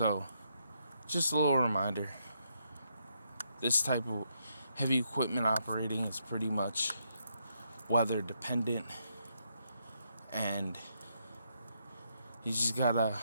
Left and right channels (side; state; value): both; inverted; correlation -0.77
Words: just a little reminder, this type of heavy equipment operating is pretty much weather dependent, and you just gotta